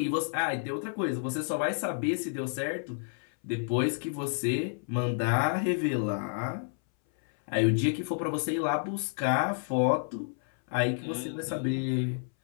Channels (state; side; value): silent; right; 58 dB below the other